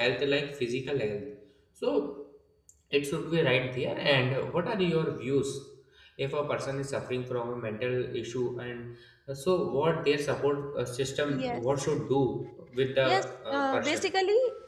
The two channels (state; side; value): identical; both; correlation 1.00